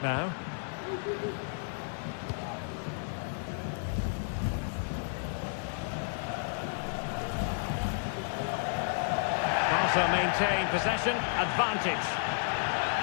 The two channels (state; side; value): silent; right; digital silence